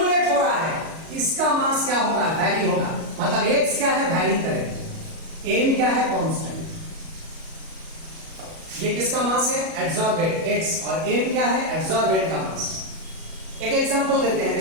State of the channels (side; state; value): left; late; 37 ms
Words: हो रहा है इसका मास क्या होगा, वैरी होगा। मतलब एक्स क्या है, वैरी करेगा, एम क्या है, कांस्टेंट। ये किसका मास है, एड्सॉर्बेंट एक्स, और एम क्या है, एड्सॉर्बेंट का मास। एक एग्जांपल देते हैं,